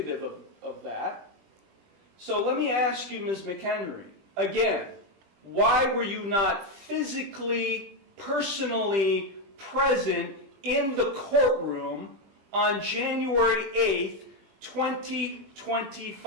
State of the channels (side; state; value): left; late; 20 ms